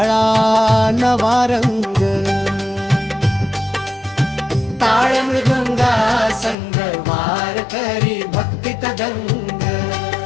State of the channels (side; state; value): right; drops out; at 6.6 s